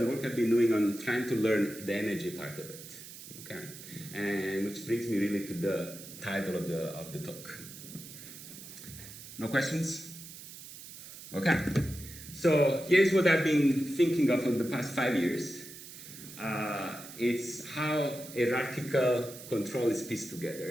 work I've been doing on trying to learn the energy part of it. Okay, and which brings me really to the title of the talk. No questions? Okay. So here's what I've been thinking of for the past 5 years. It's how hierarchical control is pieced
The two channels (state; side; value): noise; right; hiss, 14 dB below the sound